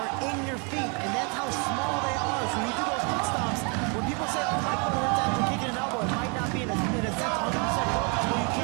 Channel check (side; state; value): left; quieter; 34.7 dB